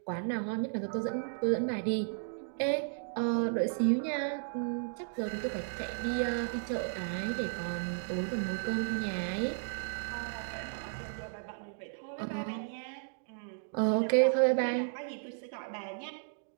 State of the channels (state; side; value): silent; left; digital silence